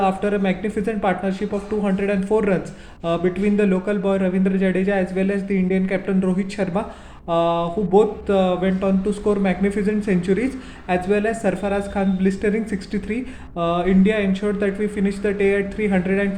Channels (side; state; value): both; identical; correlation 1.00